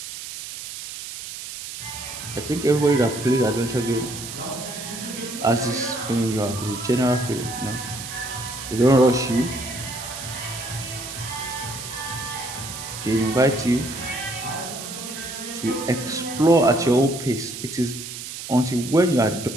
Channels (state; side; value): noise; right; hiss, 9 dB below the sound